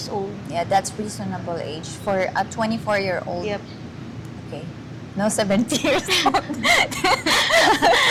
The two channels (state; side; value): identical; both; correlation 1.00